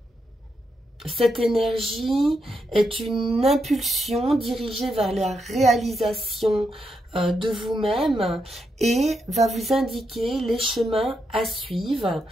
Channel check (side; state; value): both; normal; correlation 0.82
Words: Cette énergie est une impulsion dirigée vers la réalisation de vous-même et va vous indiquer les chemins à suivre